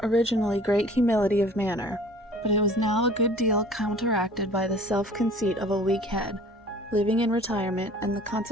originally great humility of manner, but it was now a good deal counteracted by the self-conceit of a weak head, living in retirement, and the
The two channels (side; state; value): both; normal; correlation 0.48